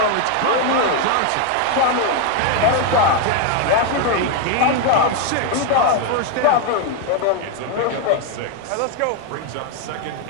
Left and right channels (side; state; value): both; different; correlation 0.01